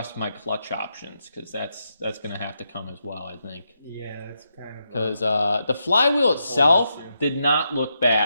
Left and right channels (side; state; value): both; inverted; correlation -0.83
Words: my clutch options, because that's going to have to come as well, I think. Yeah, that's kind of... Because the flywheel itself did not look